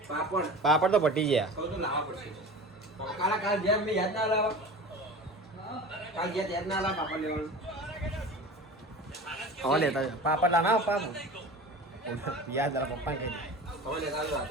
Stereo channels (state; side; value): normal; both; correlation 0.35